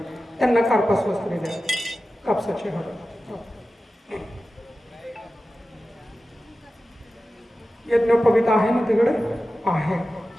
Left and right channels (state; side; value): normal; both; correlation 0.94